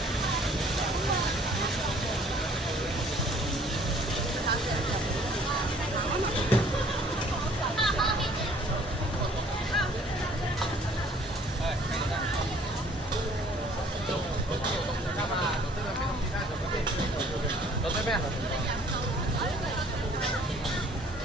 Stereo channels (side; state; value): both; normal; correlation 0.57